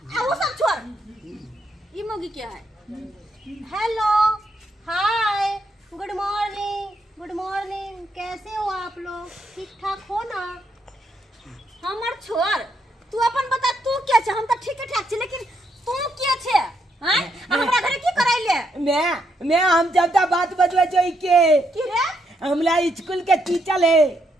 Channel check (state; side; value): normal; both; correlation 0.77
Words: आ वो सब छोड़ ई मोगी क्या है हेलो हाय गुड मॉर्निंग कैसे हो आप लोग ठीक ठाक हो ना हमर छोड़ तू अपन बता तू क्या छ हम त ठीक ठाक छी लेकिन तू क्या छे हैं हमरा घरे की कराइले मैं हम जब बात बतवे जोई के की रे हमला स्कूल के टीचर है